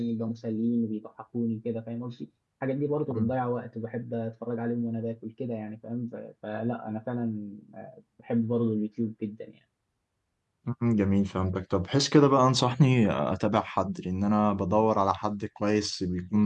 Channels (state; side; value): identical; both; correlation 1.00